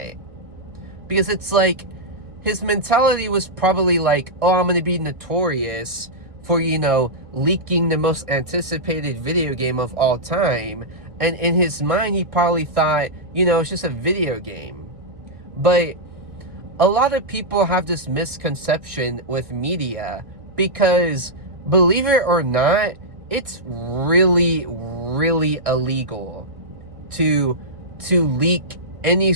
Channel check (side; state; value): left; late; 1.6 ms